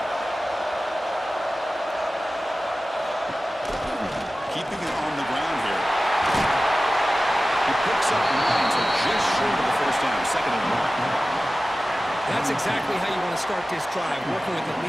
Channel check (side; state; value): both; normal; correlation 0.96